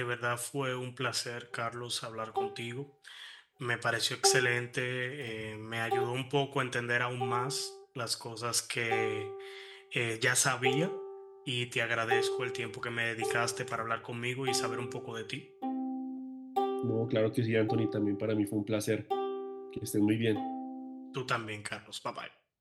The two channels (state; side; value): identical; both; correlation 1.00